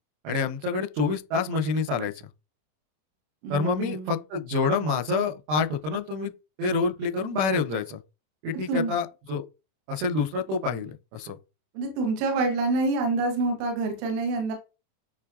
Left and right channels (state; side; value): late; left; 26 ms